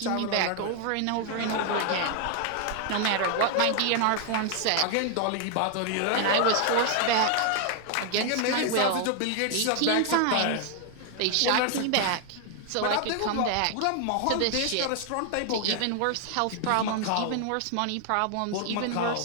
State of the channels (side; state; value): both; different; correlation 0.00